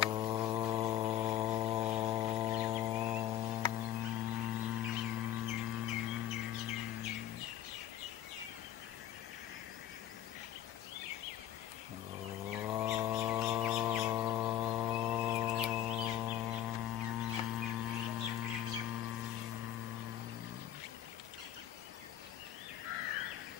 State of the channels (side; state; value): right; quieter; 11.6 dB